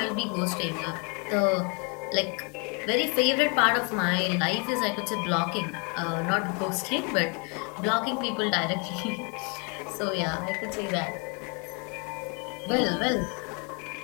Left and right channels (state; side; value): quieter; right; 34.3 dB